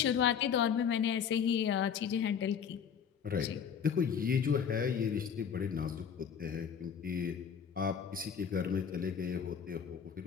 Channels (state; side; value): quieter; right; 7.4 dB